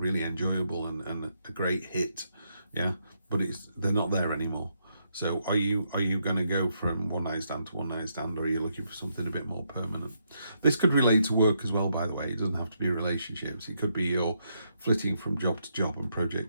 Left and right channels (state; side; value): inverted; both; correlation -0.78